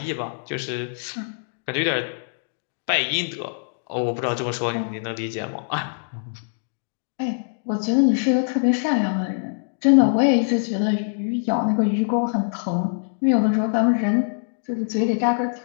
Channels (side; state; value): right; silent; digital silence